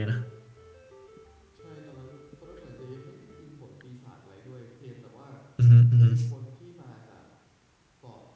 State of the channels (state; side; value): identical; both; correlation 1.00